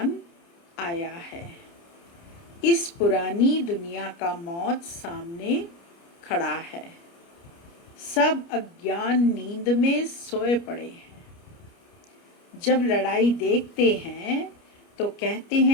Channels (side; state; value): right; late; 29 ms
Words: आया है। इस पुरानी दुनिया का मौत सामने खड़ा है। सब अज्ञान नींद में सोए पड़े हैं। जब लड़ाई देखते हैं तो कहते